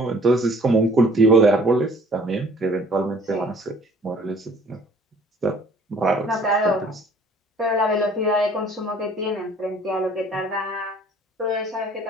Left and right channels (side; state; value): both; normal; correlation 0.54